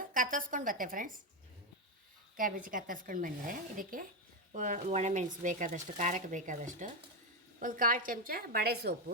ಕತ್ತರಿಸ್ಕೊಂಡು ಬತ್ತೆ ಫ್ರೆಂಡ್ಸ್. ಕ್ಯಾಬೇಜಿ ಕತ್ತರಿಸ್ಕೊಂಡು ಬಂದಿದೆ. ಇದಕ್ಕೆ ಒಣಮೆಣಸು ಬೇಕಾದಷ್ಟು, ಖಾರಕ್ಕೆ ಬೇಕಾದಷ್ಟು, ಒಂದು 1/4 ಚಮಚ ಬಡೆ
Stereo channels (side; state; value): both; normal; correlation 0.07